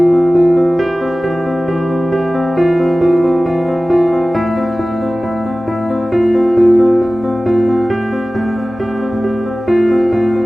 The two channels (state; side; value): normal; both; correlation 0.97